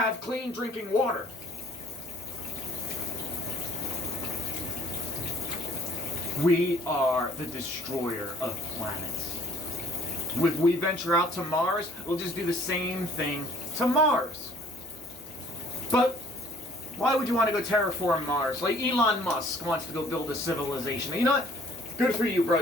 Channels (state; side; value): normal; both; correlation 0.57